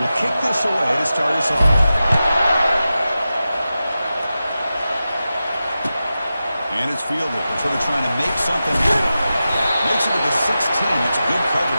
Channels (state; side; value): inverted; both; correlation -0.93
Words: kick this away to start us off. And it's fielded. They're sort of trying to make something happen. Makes it to the 16. That's good